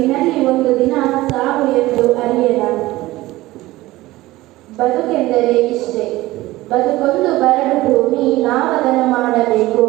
ಒಂದು ದಿನ ಸಾವು ಎಂದು ಅರಿಯದ ಬದುಕೆಂದರೆ ಇಷ್ಟೇ ಬದುಕೊಂದು ಬರಡು ಭೂಮಿ ನಾವದನ್ನು ಮಾಡಬೇಕು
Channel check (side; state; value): left; quieter; 18.0 dB